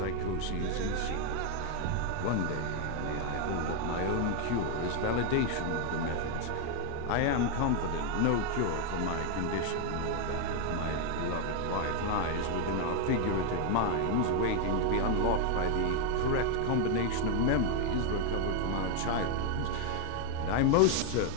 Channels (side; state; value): both; different; correlation 0.00